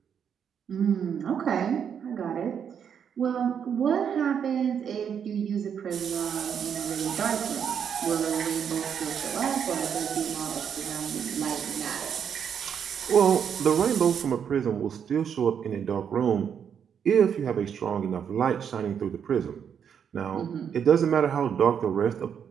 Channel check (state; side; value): quieter; left; 7.8 dB